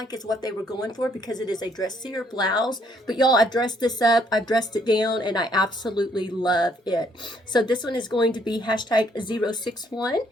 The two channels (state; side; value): normal; both; correlation 0.68